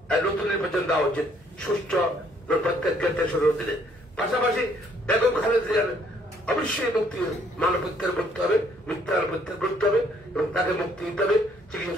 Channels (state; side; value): normal; both; correlation 0.65